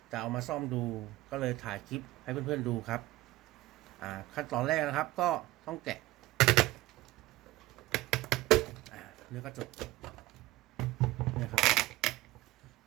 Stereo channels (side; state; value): left; quieter; 17.8 dB